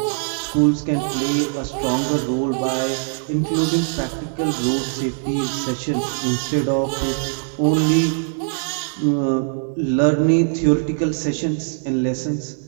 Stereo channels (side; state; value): left; silent; digital silence